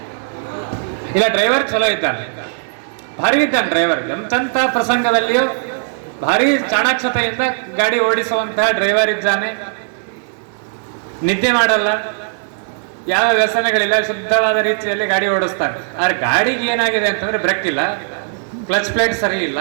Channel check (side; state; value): left; silent; digital silence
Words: ಇಲ್ಲ, ಡ್ರೈವರ್ ಚಲೋ ಇದ್ದಾನೆ, ಭಾರಿ ಇದ್ದಾನೆ ಡ್ರೈವರ್. ಎಂತೆಂಥ ಪ್ರಸಂಗದಲ್ಲಿಯೂ ಭಾರಿ ಚಾಣಾಕ್ಷತೆಯಿಂದ ಗಾಡಿ ಓಡಿಸುವಂತಹ ಡ್ರೈವರ್ ಇದ್ದಾನೆ. ನಿದ್ದೆ ಮಾಡಲ್ಲ, ಯಾವ ವ್ಯಸನಗಳಿಲ್ಲ, ಶುದ್ಧವಾದ ರೀತಿಯಲ್ಲಿ ಗಾಡಿ ಓಡಿಸ್ತಾನೆ. ಆದ್ರೆ ಗಾಡಿಗೆ ಏನಾಗಿದೆ ಅಂತಂದ್ರೆ ಬ್ರೇಕ್ ಇಲ್ಲ, ಕ್ಲಚ್ ಪ್ಲೇಟ್ ಸರಿ ಇಲ್ಲ,